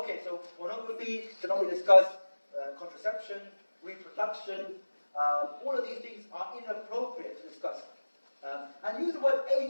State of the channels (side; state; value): both; inverted; correlation -1.00